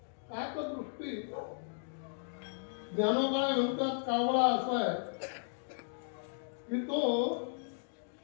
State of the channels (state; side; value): silent; right; digital silence